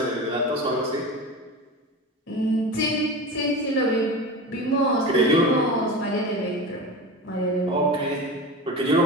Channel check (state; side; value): normal; both; correlation 0.28